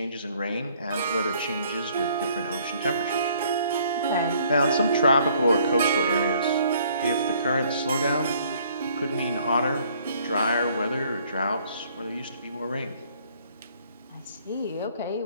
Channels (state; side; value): inverted; both; correlation -0.61